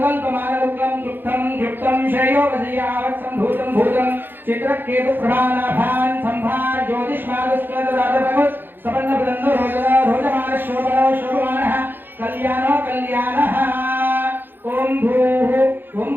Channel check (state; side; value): late; left; 0.097 ms